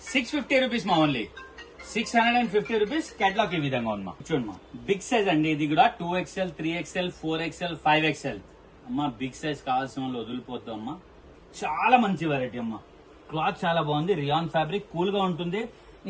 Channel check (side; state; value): both; identical; correlation 1.00